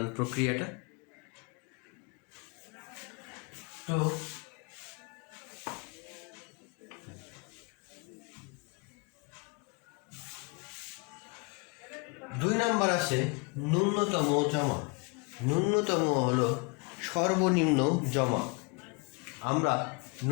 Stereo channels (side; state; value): right; quieter; 31.3 dB